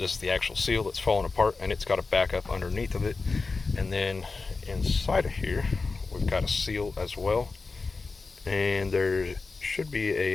is the actual seal that's falling apart, and it's got a backup underneath of it. And then inside of here we've got a seal as well, and there should be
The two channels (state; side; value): quieter; right; 4.1 dB